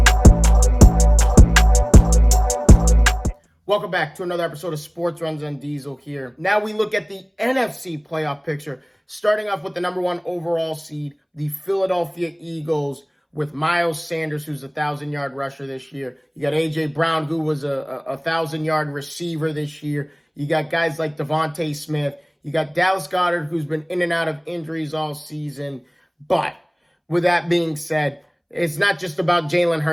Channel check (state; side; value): identical; both; correlation 1.00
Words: Welcome back to another episode of Sports Runs on Diesel here. Now we look at the NFC playoff picture, starting off with the number one overall seed, the Philadelphia Eagles, with Miles Sanders, who's a 1,000-yard rusher this year. You got A.J. Brown, who was a 1,000-yard receiver this year. You got guys like Devontae Smith. You got Dallas Goedert, who's been in and out of injuries all season. But with that being said, it's not just about Jalen